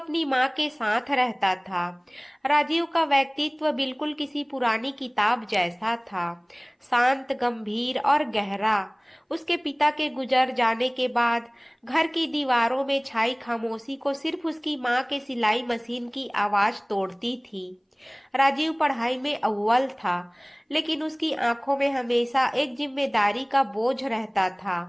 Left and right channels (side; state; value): both; identical; correlation 1.00